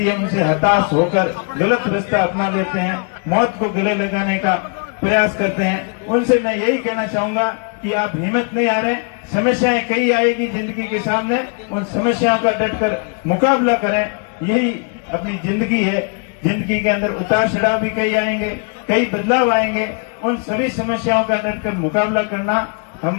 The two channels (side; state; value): right; quieter; 38.8 dB